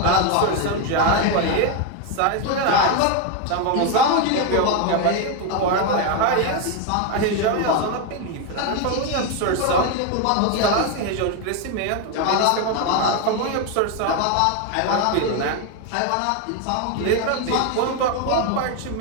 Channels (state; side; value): different; both; correlation 0.02